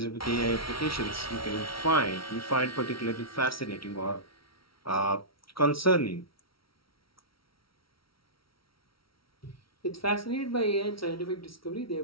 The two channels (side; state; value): right; late; 0.75 ms